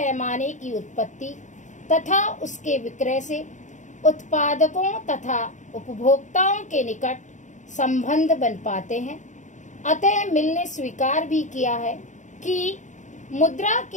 की उत्पत्ति तथा उसके विक्रय से उत्पादकों तथा उपभोक्ताओं के निकट संबंध बन पाते हैं। अतः मिल ने स्वीकार भी किया है कि मुद्रा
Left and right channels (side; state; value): right; late; 0.36 ms